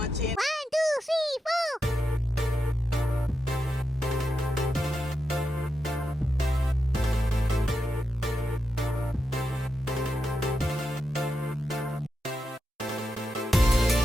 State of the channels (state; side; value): normal; both; correlation 0.87